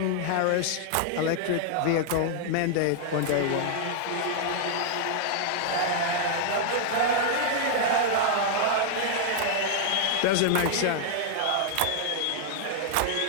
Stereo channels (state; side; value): different; both; correlation -0.01